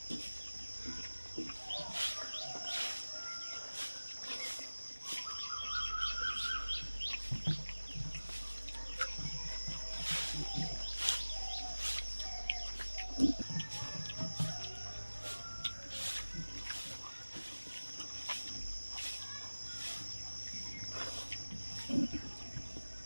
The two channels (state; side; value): inverted; both; correlation -1.00